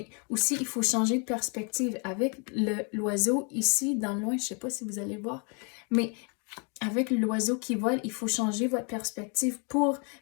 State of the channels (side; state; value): right; quieter; 36.2 dB